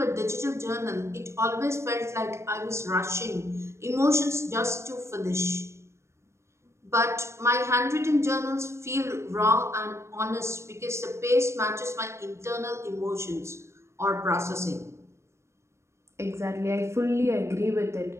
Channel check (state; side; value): late; left; 0.13 ms